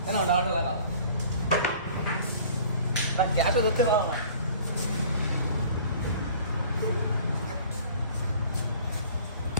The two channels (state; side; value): inverted; both; correlation -0.48